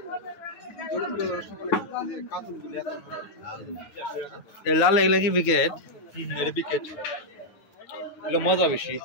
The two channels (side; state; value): right; late; 9.4 ms